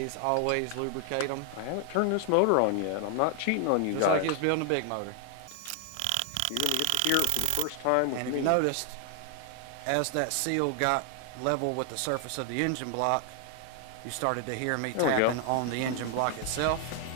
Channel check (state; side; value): different; both; correlation 0.00